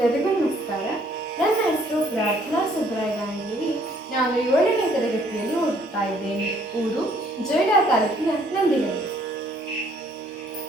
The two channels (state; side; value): normal; both; correlation 0.63